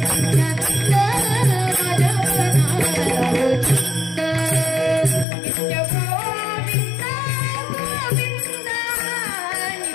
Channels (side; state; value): right; drops out; at 5.2 s